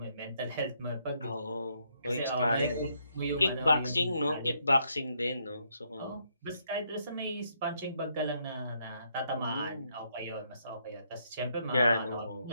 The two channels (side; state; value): both; inverted; correlation -0.74